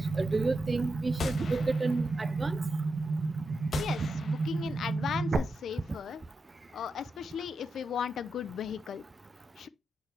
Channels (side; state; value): both; normal; correlation 0.87